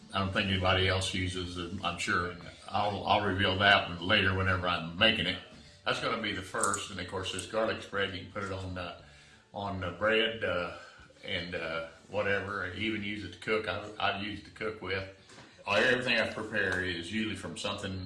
I don't think anybody else uses. I'm sure I'll reveal that later whenever I'm making it. That's going to be the first, and of course this garlic spread, you can put it on bread and whatever. Even use it to cook. I've used to cook with. Everything I prepare is usually from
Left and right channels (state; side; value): identical; both; correlation 1.00